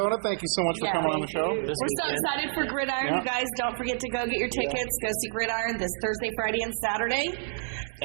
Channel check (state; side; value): silent; left; digital silence